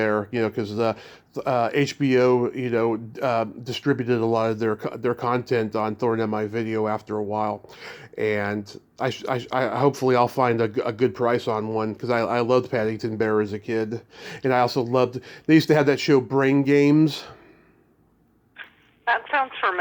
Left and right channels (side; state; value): both; identical; correlation 1.00